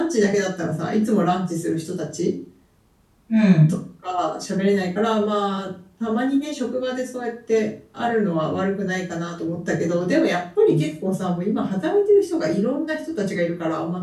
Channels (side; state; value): both; identical; correlation 1.00